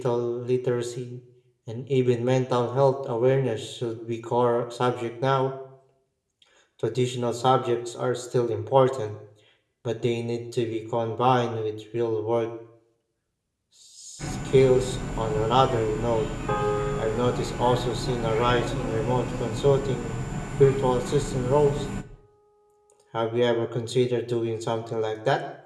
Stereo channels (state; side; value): identical; both; correlation 1.00